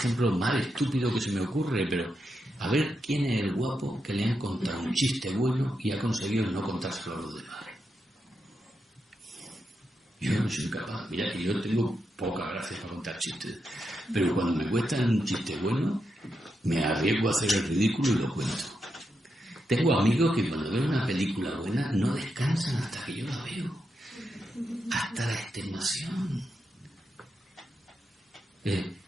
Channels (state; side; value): normal; both; correlation 0.85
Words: más estúpido que se me ocurre, pero a ver quién es el guapo que le han contado un chiste bueno y ha conseguido no contárselo a los demás. Yo no soy capaz. Mira que yo tengo poca gracia para contar chistes, pero cuando me cuestan un chiste bueno, me arriesgo a hacer el ridículo y lo cuento. Tengo amigos que cuando ven una película buena no descansan hasta que yo la veo. Hasta la extenuación.